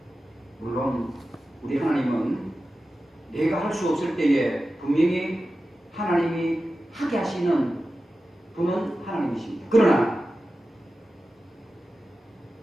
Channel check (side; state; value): both; normal; correlation 0.93